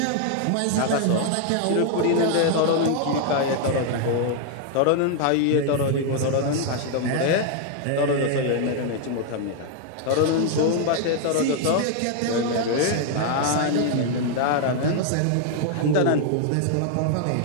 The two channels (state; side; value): different; both; correlation 0.00